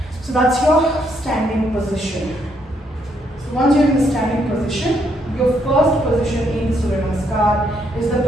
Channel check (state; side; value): normal; both; correlation 0.74